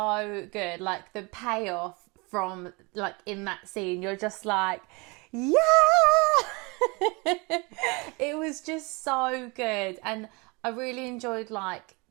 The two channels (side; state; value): left; quieter; 27.9 dB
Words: good. Like the payoff from like in that scene, you're just like, yeah! It was just so good. And I really enjoyed like